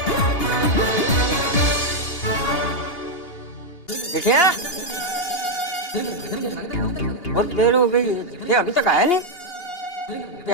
देखिए, बहुत देर हो गई, ये अभी तक आया नहीं। ये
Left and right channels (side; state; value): right; late; 2.8 ms